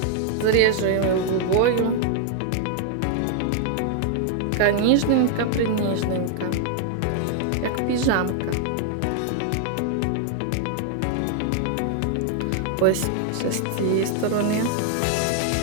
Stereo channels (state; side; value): different; both; correlation 0.00